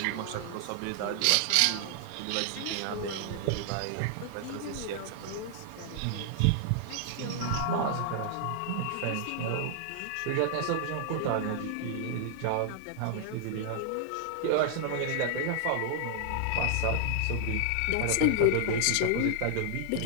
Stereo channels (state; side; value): different; both; correlation -0.01